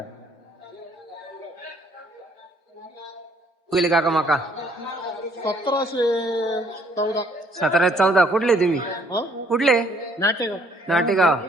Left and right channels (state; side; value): normal; both; correlation 0.63